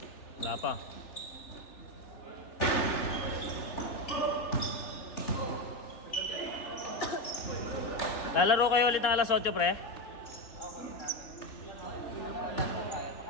Wala pa. Lalaro kayo ulit ng alas 8, pre?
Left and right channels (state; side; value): late; right; 3.5 ms